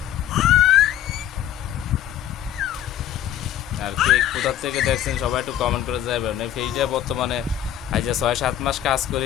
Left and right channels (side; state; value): right; quieter; 11.3 dB